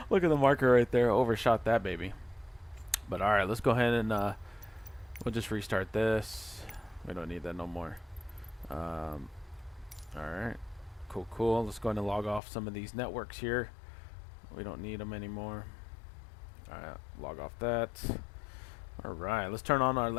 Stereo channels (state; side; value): drops out; right; at 12.4 s